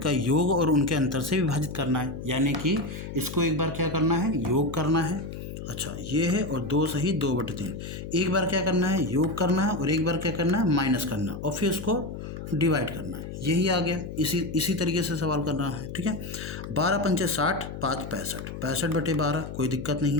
योग और उनके अंतर से विभाजित करना है। यानी कि इसको एक बार क्या करना है, योग करना है। अच्छा, ये है, और 2 सही 2/3, एक बार क्या करना है, योग करना है, और एक बार क्या करना है, माइनस करना है, और फिर उसको डिवाइड करना है। यही आ गया, इसी तरीके से सवाल करना है, ठीक है। 12 पंचे 60, 5 65, 65/12, कोई दिक्कत नहीं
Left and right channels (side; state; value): left; noise; hum, 9 dB below the sound